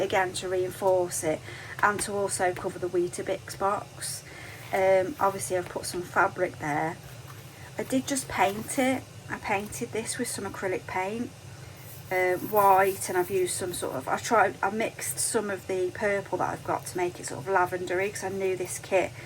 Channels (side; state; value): both; identical; correlation 1.00